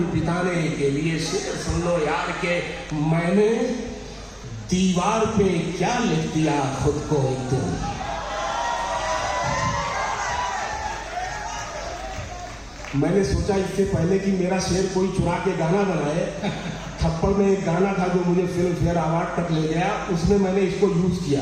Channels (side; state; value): both; identical; correlation 1.00